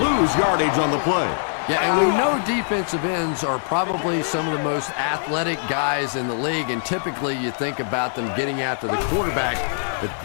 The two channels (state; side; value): silent; right; 64 dB below the other